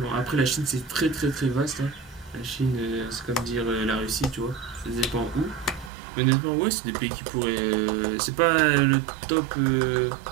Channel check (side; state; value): left; drops out; at 5.9 s